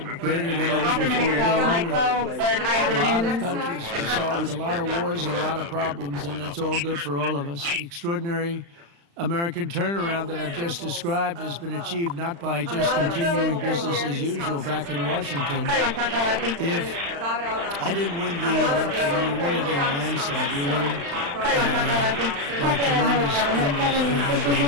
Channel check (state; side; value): late; left; 35 ms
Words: greater than ever before. We get along with a lot of countries. We solved a lot of wars and a lot of problems, and that's all good for all of us. The extraordinary American turnaround that I've just described has been achieved not by just continuing business as usual back in Washington. If I didn't win the election, we won it in a landslide. We won by tremendous